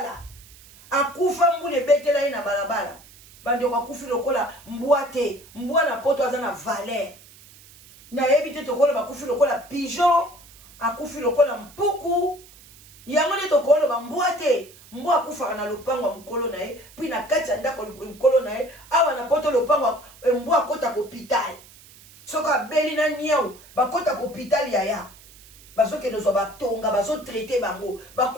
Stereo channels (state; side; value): noise; right; hiss, 23 dB below the sound